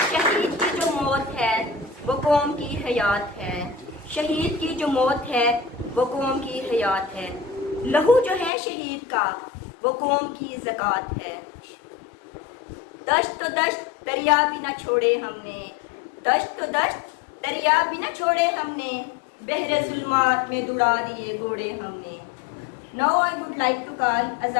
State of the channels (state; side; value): drops out; right; at 8.5 s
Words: شہید کی جو موت ہے وہ قوم کی حیات ہے، شہید کی جو موت ہے وہ قوم کی حیات ہے، لہو جو ہے شہید کا وہ قوم کی زکوٰۃ ہے۔ دشت تو دشت دریا بھی نہ چھوڑے ہم نے، دشت تو دشت دریا بھی نہ چھوڑے ہم نے، بحر ظلمات میں دوڑا دیے گھوڑے ہم نے۔ Now I would like to call